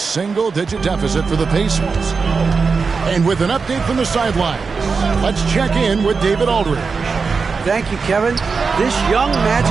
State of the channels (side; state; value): left; quieter; 4.9 dB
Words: deficit for the Pacers. And with an update from the sidelines, let's check in with David Aldridge. Thank you, Kevin. This young